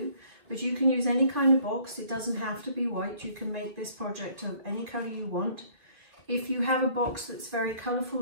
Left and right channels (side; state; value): left; late; 2.9 ms